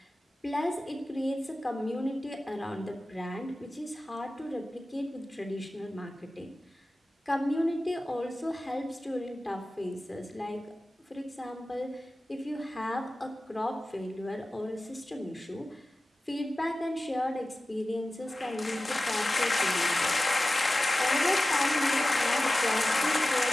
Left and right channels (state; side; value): normal; both; correlation 0.95